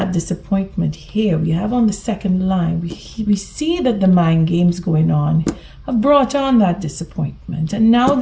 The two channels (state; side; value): identical; both; correlation 1.00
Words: disappointment here. We have on the second line, we see that the mind games going on have brought on that disappointment. And now